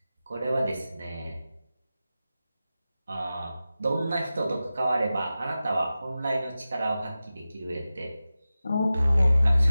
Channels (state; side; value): inverted; both; correlation -0.94